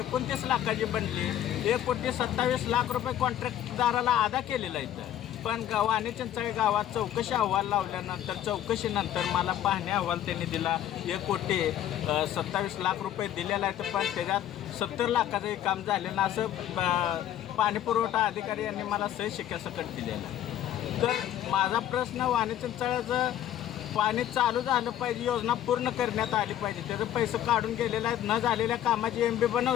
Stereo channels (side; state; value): right; quieter; 11.6 dB